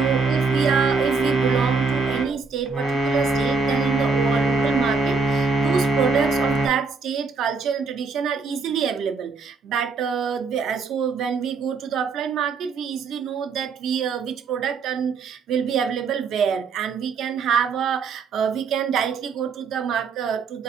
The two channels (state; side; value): quieter; left; 4.8 dB